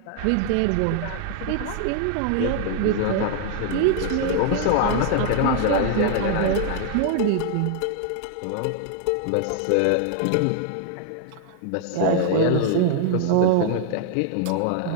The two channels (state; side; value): different; both; correlation 0.00